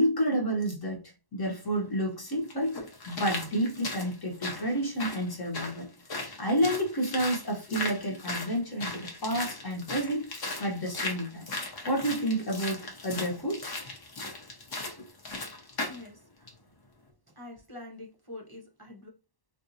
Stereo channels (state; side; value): late; right; 1.1 ms